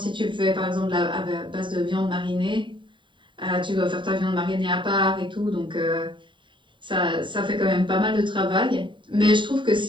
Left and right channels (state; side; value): late; left; 0.23 ms